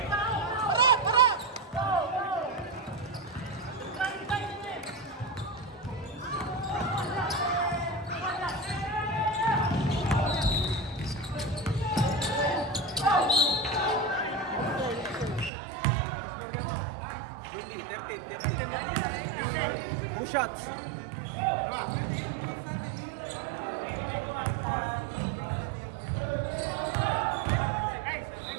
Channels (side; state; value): left; drops out; at 15.5 s